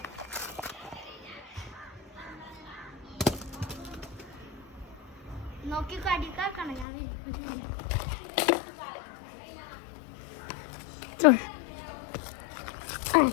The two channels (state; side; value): drops out; right; at 6.9 s